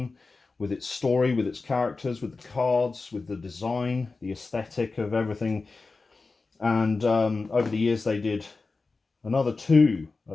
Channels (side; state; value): right; quieter; 3.9 dB